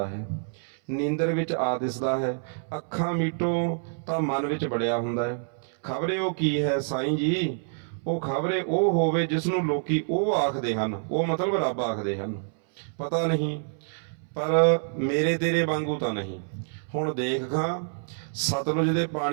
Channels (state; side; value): silent; left; 59 dB below the other